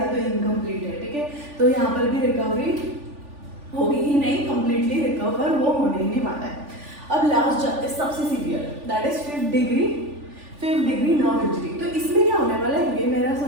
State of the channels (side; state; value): left; late; 3.5 ms